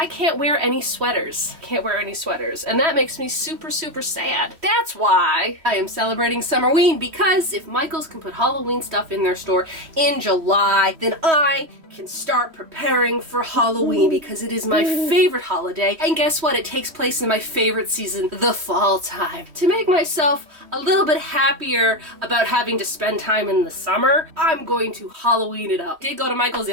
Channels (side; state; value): left; late; 3.1 ms